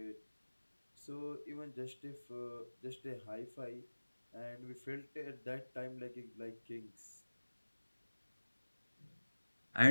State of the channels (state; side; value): inverted; both; correlation -1.00